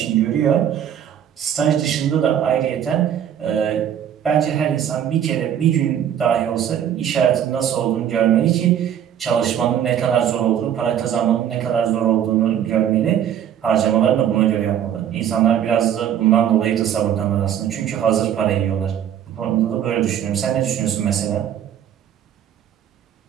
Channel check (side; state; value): left; quieter; 9.7 dB